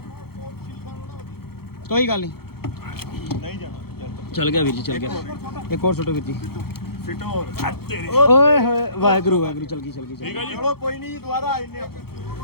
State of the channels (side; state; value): right; late; 0.95 ms